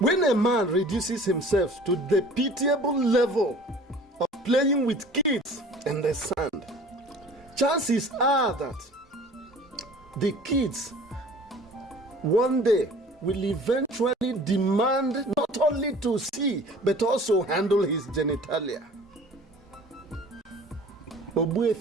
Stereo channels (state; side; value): normal; both; correlation 0.47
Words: a man reduces himself to the pitiable level of playing with kids in the sand, chances are that the kids one day will eventually demand not only to see but also handle his genitalia.